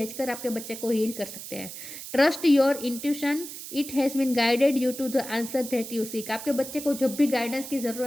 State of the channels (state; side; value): noise; right; hiss, 11 dB below the sound